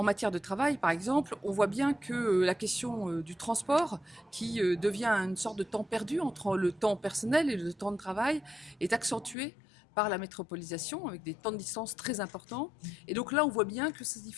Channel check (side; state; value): right; drops out; at 9.3 s